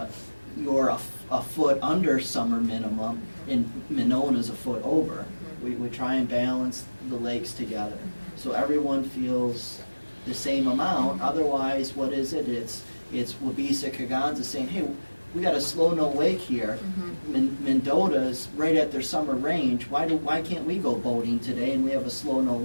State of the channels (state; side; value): inverted; both; correlation -1.00